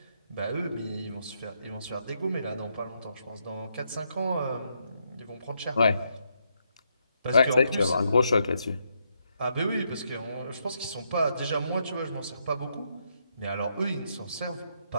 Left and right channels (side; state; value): both; inverted; correlation -0.78